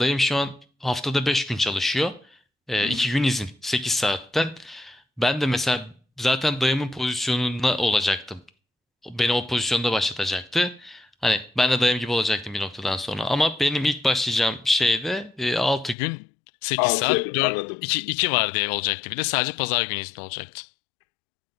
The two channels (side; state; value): right; drops out; at 16.0 s